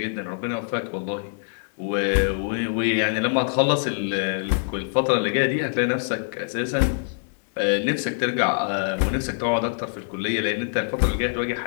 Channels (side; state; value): right; silent; 62 dB below the other